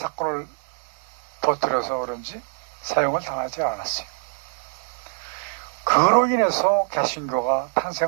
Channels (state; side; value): silent; left; 62 dB below the other